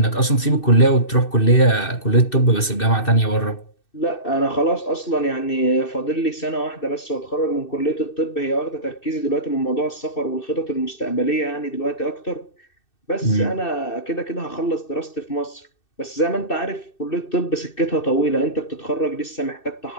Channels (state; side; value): late; right; 2.6 ms